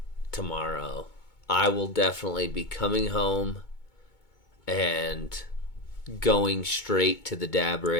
tomorrow, I will definitely be coming home and going straight to the dab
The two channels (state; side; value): late; right; 2.2 ms